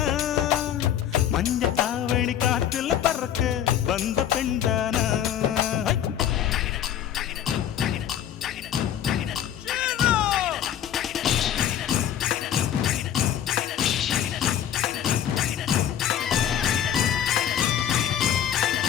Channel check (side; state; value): right; quieter; 10.1 dB